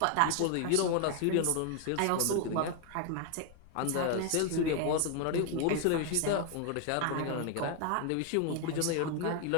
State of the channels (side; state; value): both; different; correlation 0.01